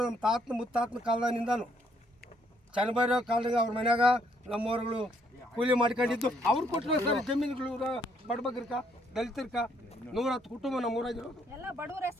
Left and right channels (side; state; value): both; normal; correlation 0.69